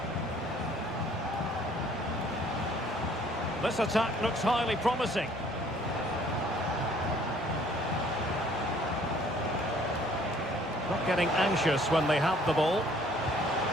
This attack looks highly promising. Not getting anxious when they have the ball.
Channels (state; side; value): normal; both; correlation 0.58